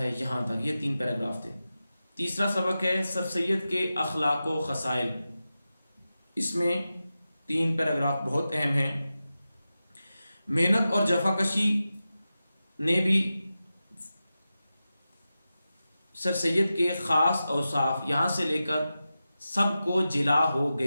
यहाँ तक। ये 3 पैराग्राफ थे। तीसरा सबक है सर सैयद के अखलाक व खसाइल। इसमें 3 पैराग्राफ बहुत अहम हैं। मेहनत और जफाकशी ने भी सर सैयद के ख़ास औसाफ यहाँ से लेकर सबको जिला हो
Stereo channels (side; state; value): both; inverted; correlation -0.93